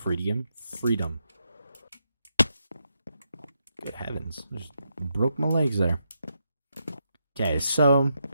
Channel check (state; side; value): inverted; both; correlation -0.81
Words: Freedom. Good heavens. Just broke my legs there. Okay, so